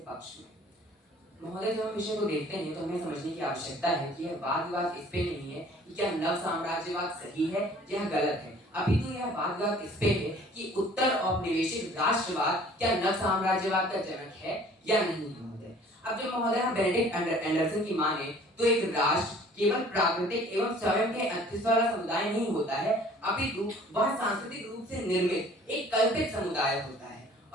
पक्ष में महोदय, जब हम विषय को देखते हैं तो हमें समझने की आवश्यकता है कि यह वाद विवाद इस पे नहीं है कि क्या नव साम्राज्यवाद सही है या गलत है, अपितु यह वाद विवाद इस पे है कि उत्तर औपनिवेशिक राष्ट्रवाद क्या नव साम्राज्यवाद का जनक है या नहीं महोदय। अब जब महोदय हम बेनेडिक्ट एंडरसन की माने तो एक राष्ट्र केवल प्राकृतिक एवं स्वयं के अस्तित्व वाला समुदाय नहीं होता है, अपितु वह सांस्कृतिक रूप से निर्मित एक कल्पित समुदाय होता है।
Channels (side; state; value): both; normal; correlation 0.52